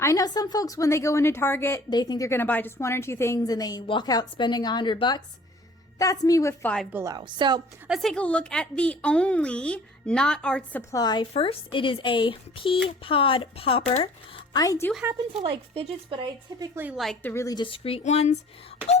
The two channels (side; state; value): both; normal; correlation 0.51